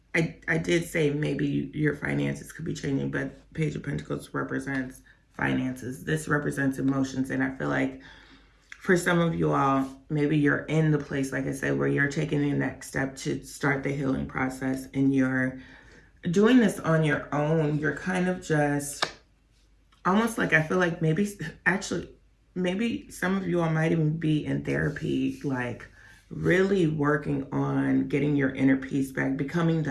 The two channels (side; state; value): both; identical; correlation 1.00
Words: I did say maybe your finances could be changing, but Page of Pentacles represents finances. This represents emotions, and I feel like for some of you all, maybe you're in the place, like I said, where you're taking the next step to start the healing process, and you're doing this on your own. You're kind of just almost like, I feel like maybe actually maybe some of you all might even be in therapy, like really working on getting your inner peace back, becoming the